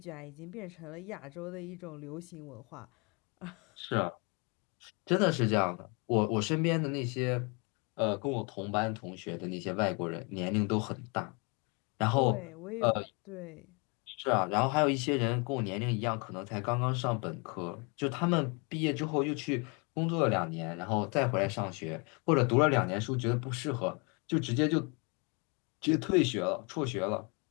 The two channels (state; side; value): quieter; right; 32.3 dB